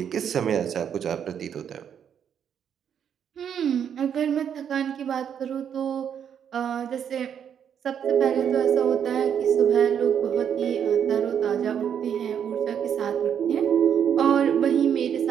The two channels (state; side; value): quieter; left; 8.4 dB